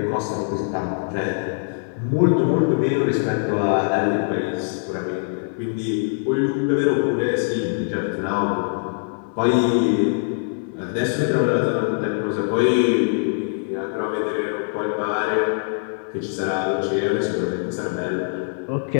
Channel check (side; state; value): right; silent; digital silence